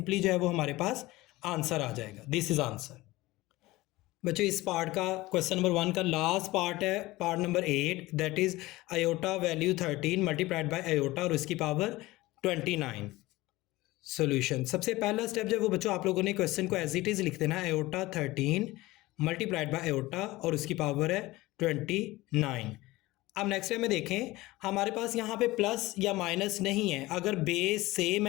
जो है वो हमारे पास आंसर आ जाएगा। This is answer. बच्चों इस पार्ट का क्वेश्चन नंबर 1 का लास्ट पार्ट है, part number 8, that is iota value 13 multiplied by iota और उसकी पावर 29। सॉल्यूशन, सबसे पहला स्टेप जो है वो बच्चों आप लोगों ने क्वेश्चन को एज इट इज लिख देना है, आयोटा 13 मल्टीप्लाइड बाय आयोटा और उसकी पावर है 29। अब नेक्स्ट टाइम में देखें, हमारे पास यहाँ पे प्लस या माइनस नहीं है, अगर बेस सेम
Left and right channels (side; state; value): right; quieter; 19.3 dB